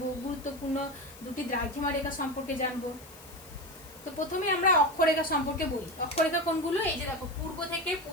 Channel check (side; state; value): left; noise; hiss, 20 dB below the sound